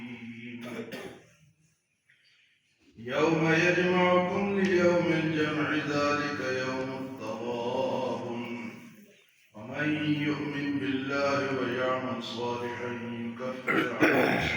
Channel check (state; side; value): identical; both; correlation 1.00